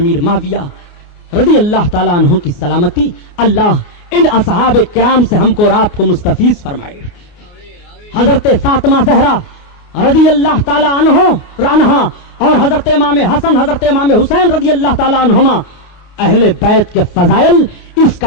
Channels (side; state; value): right; late; 29 ms